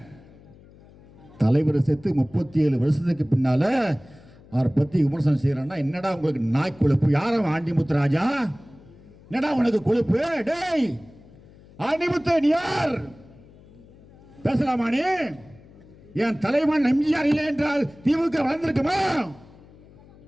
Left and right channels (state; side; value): noise; left; hum, 24 dB below the sound